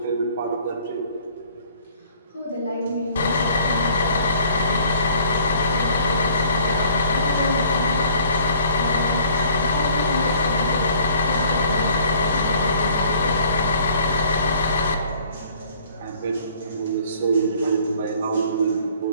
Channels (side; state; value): both; inverted; correlation -0.56